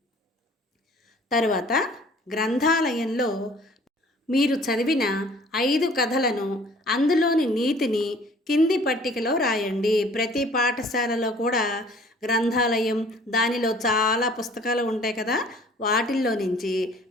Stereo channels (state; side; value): normal; both; correlation 0.53